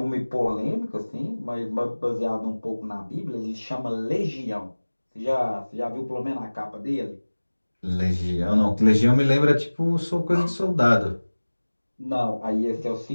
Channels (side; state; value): both; inverted; correlation -1.00